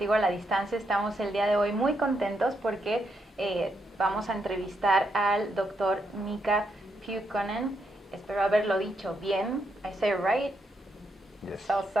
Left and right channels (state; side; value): normal; both; correlation 0.80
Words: a la Distancia. Estamos el día de hoy muy contentos porque vamos a entrevistar al doctor Miikka Pyykkönen. Espero haberlo dicho bien. I say it right? Yes.